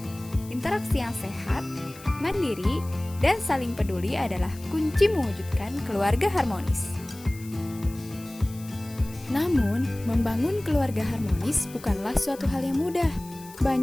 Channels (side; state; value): left; noise; hiss, 19 dB below the sound